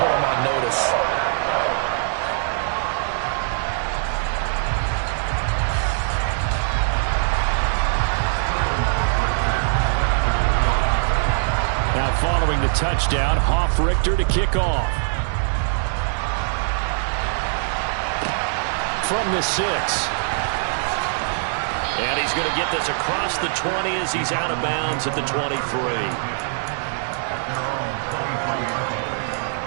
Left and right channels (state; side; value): silent; left; digital silence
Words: them on notice. Now following the touchdown, Hoff-Richter to kick off. From the 6. And he's going to get this across the 20 as he's out of bounds at the 23.